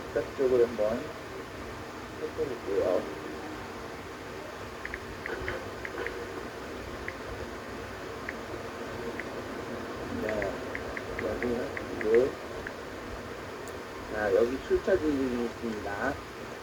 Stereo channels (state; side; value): identical; both; correlation 1.00